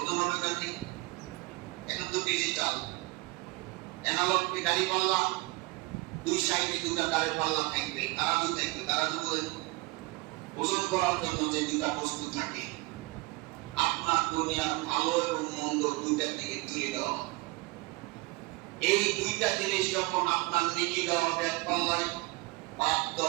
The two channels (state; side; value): quieter; left; 23.6 dB